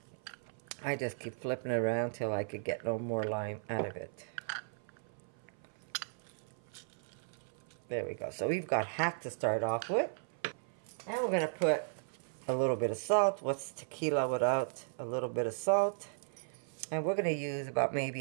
I just keep flipping it around till I could get no more lime out of it. There we go. So we've got half to start off with. And we're going to put a little bit of salt. What's tequila without a little bit of salt? And we're going to use about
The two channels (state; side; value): silent; left; 54 dB below the other